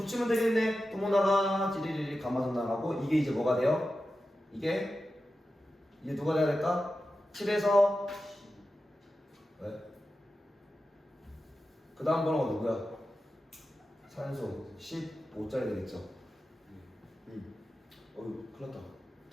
되겠네. 도모나가 찌리리리 가마돈나라고 이게 이제 뭐가 돼요? 이게 누가 돼야 될까? 7에서 왜? 그 다음 번호가 누구야? 산소 15짜리 되겠죠? 어휴 큰일 났다.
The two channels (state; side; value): normal; both; correlation 0.92